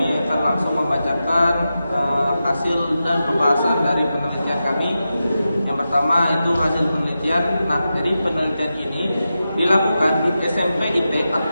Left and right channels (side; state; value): both; inverted; correlation -0.91